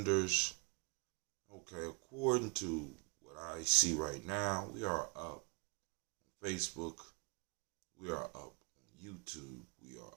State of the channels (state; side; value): quieter; left; 32.2 dB